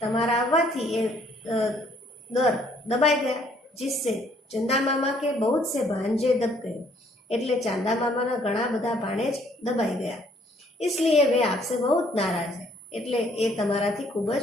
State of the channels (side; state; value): both; normal; correlation 0.64